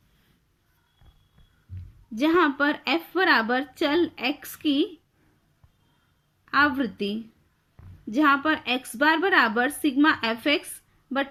जहां पर f बराबर चल x की आवृत्ति, जहां पर x बार बराबर सिग्मा fx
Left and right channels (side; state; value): both; identical; correlation 1.00